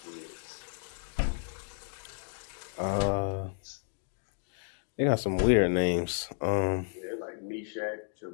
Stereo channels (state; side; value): silent; right; digital silence